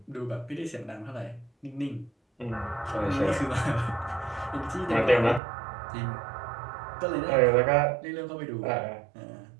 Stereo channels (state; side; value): drops out; left; at 5.4 s